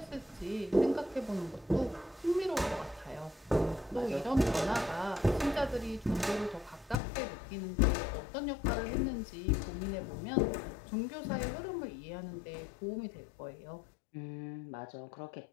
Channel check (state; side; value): drops out; right; at 7.0 s